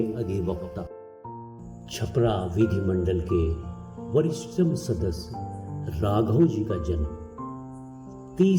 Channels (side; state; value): both; identical; correlation 1.00